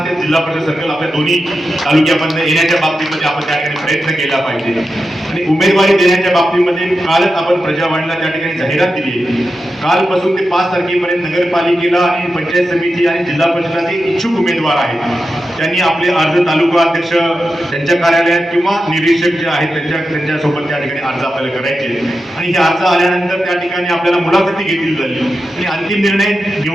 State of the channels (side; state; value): both; normal; correlation 0.90